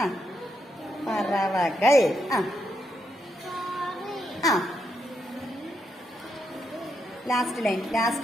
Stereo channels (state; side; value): normal; both; correlation 0.81